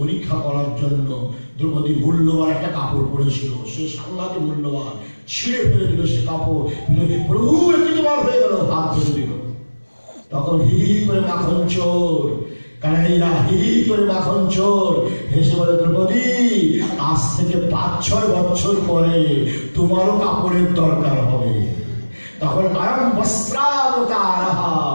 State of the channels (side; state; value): both; inverted; correlation -1.00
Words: করার জন্য দ্রৌপদী মূল্যবান একটা কাপড় পরেছিল, সে সাংঘাতিক মূল্যবান, ছিঁড়ে ফেলে দিল সে কাপড়। প্রভু একটি তোমার হয়ে গেল, হাত ফেলে দিল। তখন হি করে মাখন চোর, কানাইয়া হি করে মাখন চোর হেসে বলে, দ্রৌপদী আজ থেকে 5-6 বছর পরে তোমারও কাপড়ের দরকার হবে। তখন আয়ম বস্ত্রাবতার,